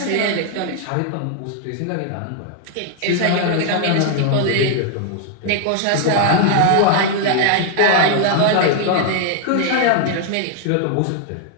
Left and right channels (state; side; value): different; both; correlation 0.00